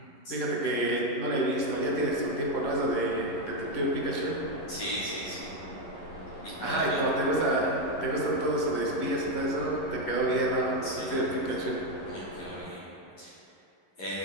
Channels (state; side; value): late; right; 11 ms